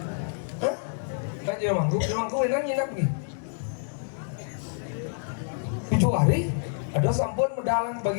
Kan jadi mangku benar nginap nih. 7 hari. Ada sampun medalang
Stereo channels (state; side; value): silent; right; digital silence